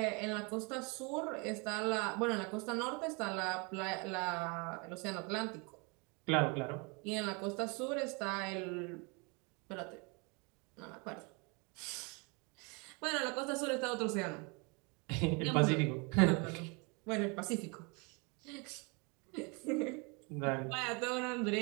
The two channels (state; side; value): quieter; left; 31.0 dB